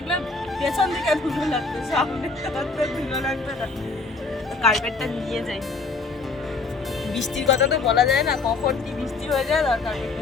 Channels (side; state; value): right; quieter; 4.0 dB